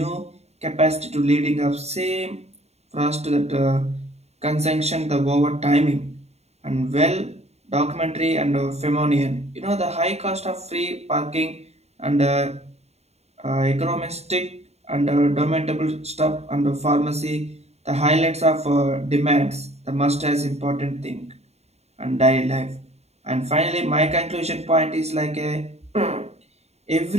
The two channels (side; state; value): left; late; 0.31 ms